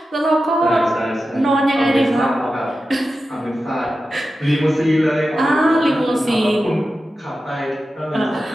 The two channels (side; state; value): both; normal; correlation 0.92